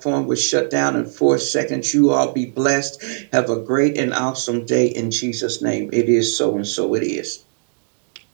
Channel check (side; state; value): left; silent; digital silence